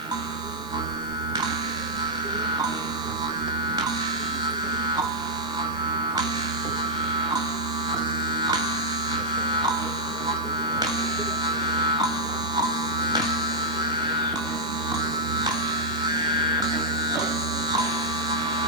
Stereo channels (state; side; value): noise; right; hiss, 21 dB below the sound